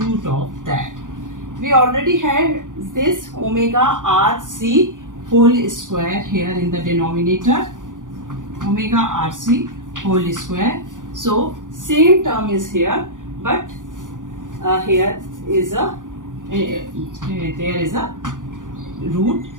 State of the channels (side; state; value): left; late; 0.88 ms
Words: of that. We already had this omega rc whole square here in the denominator, omega rc whole square. So same term is here, but here is a there is a root,